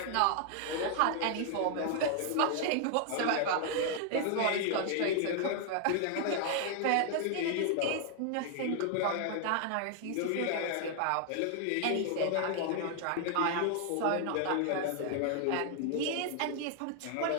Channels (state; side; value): different; both; correlation 0.00